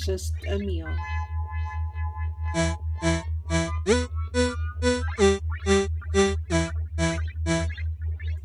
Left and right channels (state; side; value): identical; both; correlation 1.00